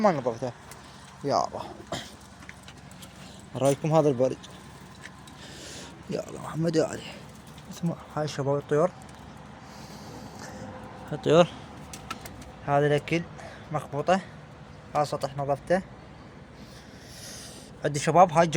نظفتها. يا الله، اراويكم هذا البرج، يا الله محمد يا علي. اسمع هاي شباب الطيور، الطيور هذا الاكل مخبوطة، هذا سطح نظفته. عندي شباب هاي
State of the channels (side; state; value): both; identical; correlation 1.00